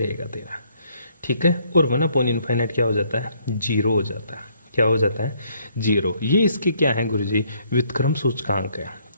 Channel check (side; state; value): both; inverted; correlation -0.68